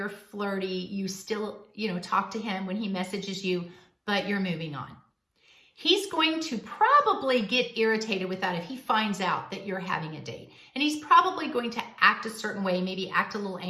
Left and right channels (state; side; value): identical; both; correlation 1.00